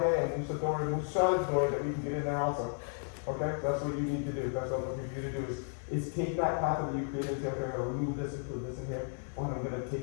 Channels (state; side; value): silent; right; 55 dB below the other